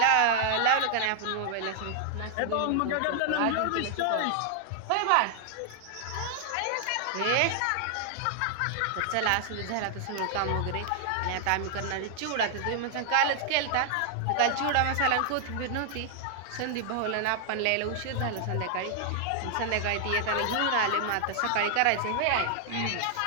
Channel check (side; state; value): both; different; correlation 0.00